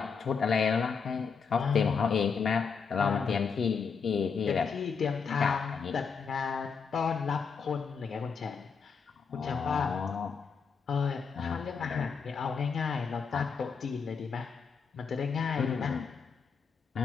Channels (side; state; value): right; quieter; 5.8 dB